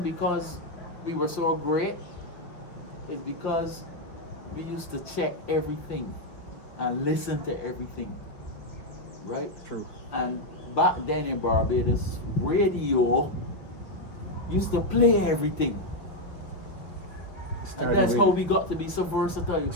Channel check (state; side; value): late; right; 5.4 ms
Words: because we were so great. It's because we used to check everything and listen to everything, right? True. And back then in Barbados, radio used to play everything. And that's how we got to be so versatile.